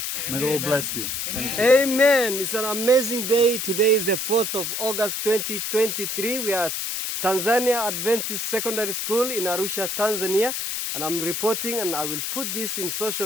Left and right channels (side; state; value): left; noise; hiss, 2 dB below the sound